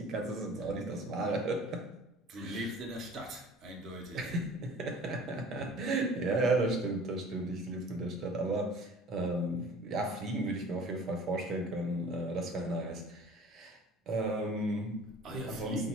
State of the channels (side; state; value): both; normal; correlation 0.46